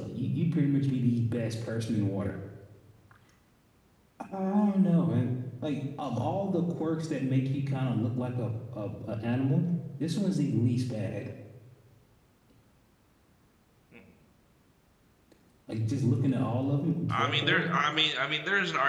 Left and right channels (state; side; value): identical; both; correlation 1.00